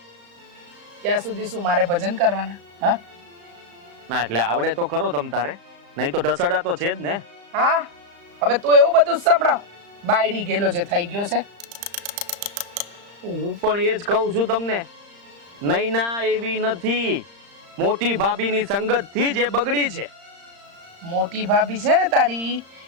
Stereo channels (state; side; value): late; left; 35 ms